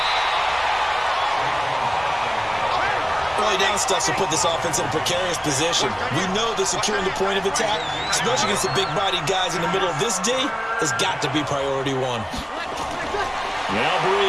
Early down stuff will put this offense in a precarious position. We know that securing the point of attack, especially against the big-bodied guys in the middle of this D, has got to be priority 1. Now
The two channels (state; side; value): identical; both; correlation 1.00